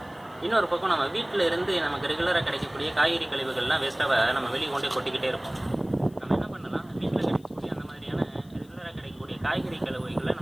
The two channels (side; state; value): left; noise; hiss, 29 dB below the sound